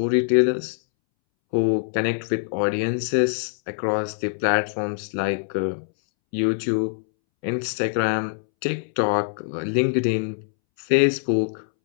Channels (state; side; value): silent; right; 63 dB below the other